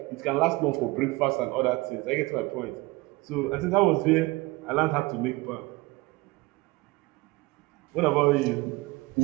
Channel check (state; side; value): quieter; left; 22.6 dB